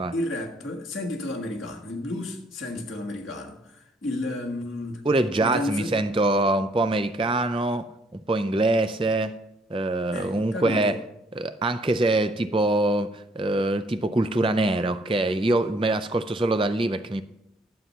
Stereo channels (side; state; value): both; normal; correlation 0.64